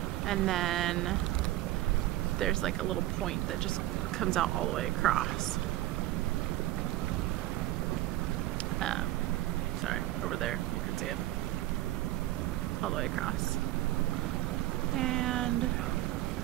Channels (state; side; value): quieter; left; 16.1 dB